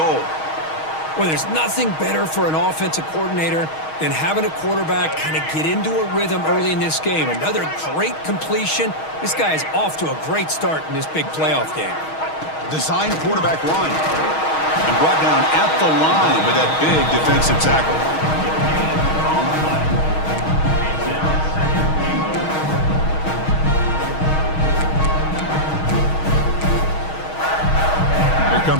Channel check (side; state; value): right; late; 6.3 ms